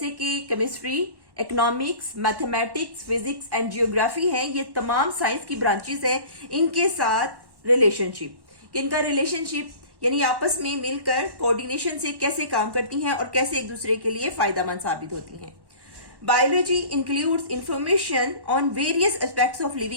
कि chemistry, economics, mathematics, physics and geography है। ये तमाम साइंस की ब्रांचेस हैं, इनके साथ रिलेशनशिप। इनका रिलेशनशिप यानी आपस में मिलकर कोऑर्डिनेशन से कैसे काम करती हैं और कैसे एक दूसरे के लिए फायदेमंद साबित होती हैं। Biology includes information on various aspects of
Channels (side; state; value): left; late; 1.1 ms